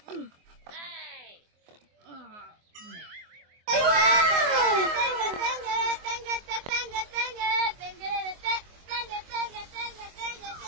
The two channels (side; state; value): left; late; 24 ms